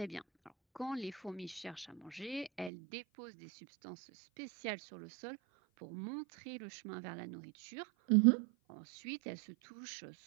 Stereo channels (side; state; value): left; drops out; at 2.7 s